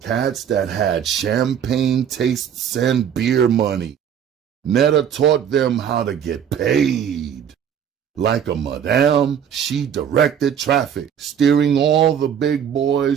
Cats that had champagne tastes and beer money. Netta taught them how to get paid. Like a madame, she directed traffic, steering all the big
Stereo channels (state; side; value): quieter; left; 8.6 dB